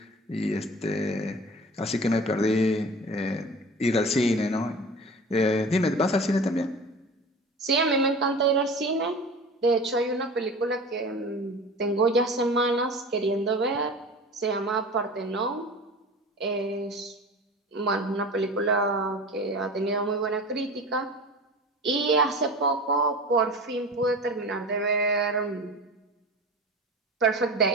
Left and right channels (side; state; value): both; normal; correlation 0.35